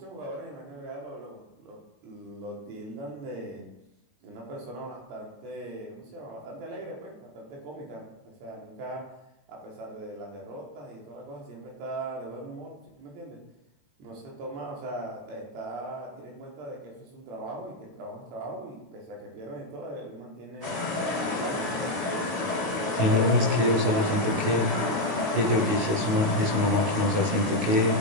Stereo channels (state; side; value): late; left; 19 ms